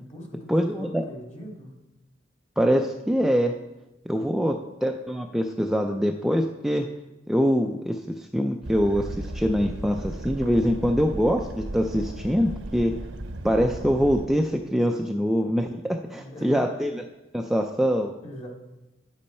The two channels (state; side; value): normal; both; correlation 0.91